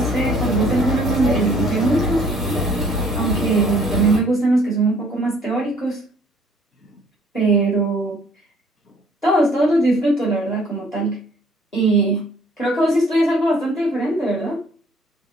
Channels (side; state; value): both; normal; correlation 0.59